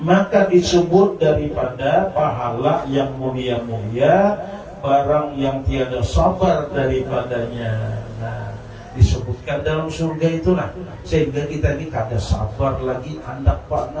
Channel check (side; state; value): both; identical; correlation 1.00